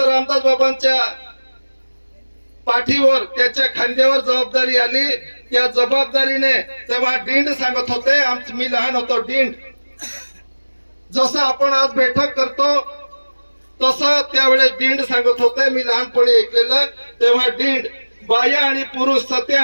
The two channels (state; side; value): inverted; both; correlation -1.00